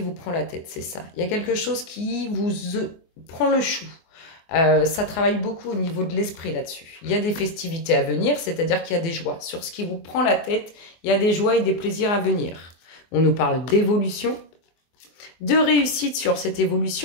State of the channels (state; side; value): late; right; 24 ms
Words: vous prend la tête, c'est ça. Il y a quelque chose qui vous prend le chou. Ça travaille beaucoup au niveau de l'esprit là-dessus. Il y a des festivités à venir, c'est-à-dire qu'il y a des joies. Sur ce qui vous prend la tête, il y a des joies et des plaisirs à venir. On nous parle d'évolution, de réussite sur cette